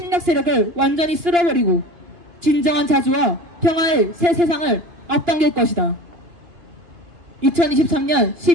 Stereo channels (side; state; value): left; late; 2.9 ms